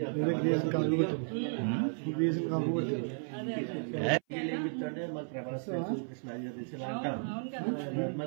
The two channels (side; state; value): left; silent; 55 dB below the other